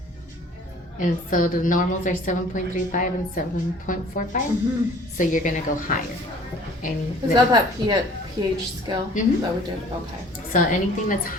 And so the normals are 7.35 and 7.45. So you're going to go higher. Is that pH scale that we did? Okay. So anything that's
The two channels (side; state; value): both; normal; correlation 0.51